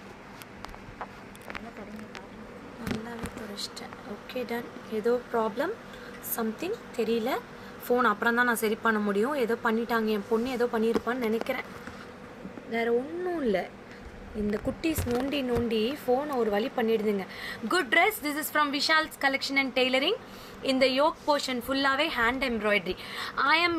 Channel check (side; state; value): both; identical; correlation 1.00